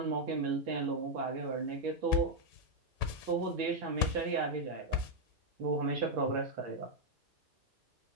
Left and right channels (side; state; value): left; late; 1.9 ms